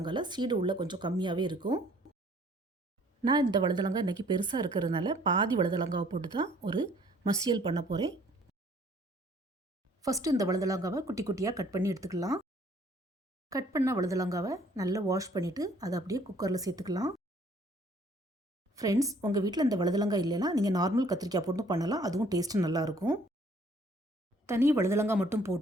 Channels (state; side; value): normal; both; correlation 0.59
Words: சீடு உள்ள கொஞ்சம் கம்மியாகவே இருக்கும். நான் இந்த வழுதலங்காய் இன்றைக்கி பெருசாக இருக்கிறதுனால பாதி வழுதலங்காவை போட்டு தான் ஒரு மசியல் பண்ண போகிறேன். ஃபஸ்ட்டு இந்த வழுதலங்காவை குட்டி குட்டியாக கட் பண்ணி எடுத்துக்கலாம். கட் பண்ண வழுதலங்காவை நல்லா வாஷ் பண்ணிவிட்டு அதை அப்படியே குக்கரில் சேர்த்துக்கலாம். ஃப்ரெண்ட்ஸ், உங்கள் வீட்டில் இந்த வழுதலங்காய் இல்லைன்னா நீங்கள் நார்மல் கத்திரிக்காய் போட்டு பண்ணலாம். அதுவும் டேஸ்ட்டு நல்லாயிருக்கும். தனி வழுதலங்காய் மட்டும்